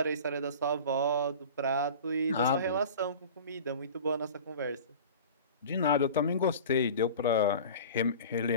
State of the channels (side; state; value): both; inverted; correlation -0.38